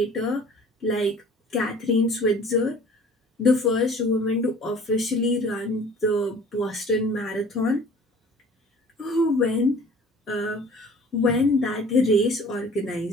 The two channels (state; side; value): normal; both; correlation 0.48